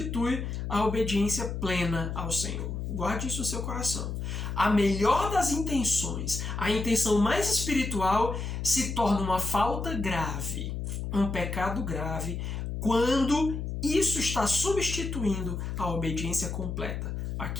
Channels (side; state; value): left; noise; hum, 4 dB below the sound